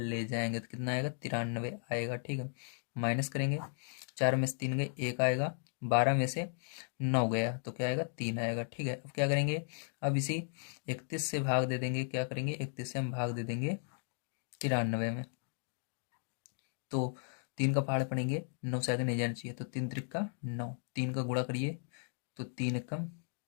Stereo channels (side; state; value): right; silent; 54 dB below the other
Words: जाएंगे, तो कितना आएगा, 93 आएगा। ठीक है, माइनस करेंगे, 4 में से 3 गए, 1 आएगा, 12 में से 9 गया, तो क्या आएगा, 3 आएगा। ठीक है, अब क्या करेंगे, अब इसी 31 से भाग दे देंगे, क्या करेंगे, 31 से हम भाग दे देंगे 93 में। तो 3 का पहाड़ पड़ेंगे, 9 से आगे नहीं जाना चाहिए, तो 3 त्रिक का 9, 3 का गुणा करिए, तो 3 एकम